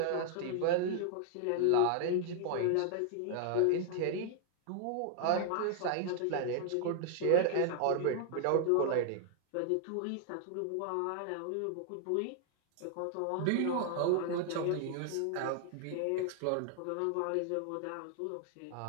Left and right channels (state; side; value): different; both; correlation 0.00